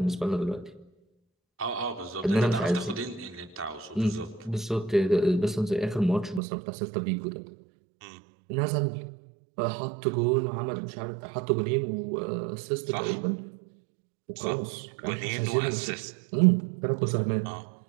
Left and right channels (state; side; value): drops out; left; at 6.4 s